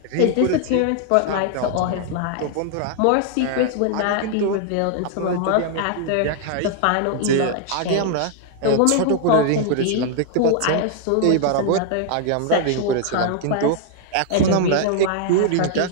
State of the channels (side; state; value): both; different; correlation 0.00